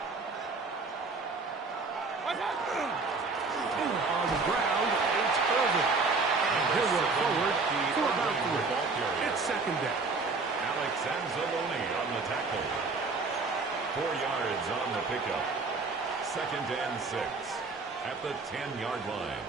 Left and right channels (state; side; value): quieter; left; 4.0 dB